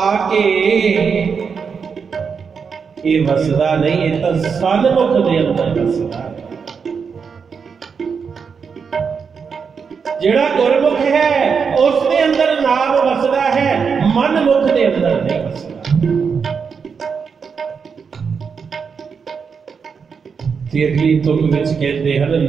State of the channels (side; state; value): left; quieter; 6.0 dB